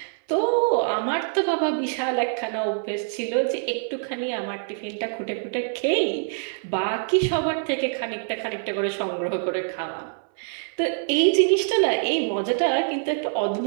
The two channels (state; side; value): silent; left; 58 dB below the other